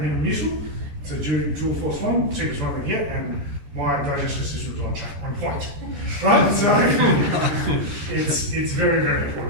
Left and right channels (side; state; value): left; late; 14 ms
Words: Muscular. It's a dual force one, cheapest one I can get, and my digestive system is on point, right? So it's very, very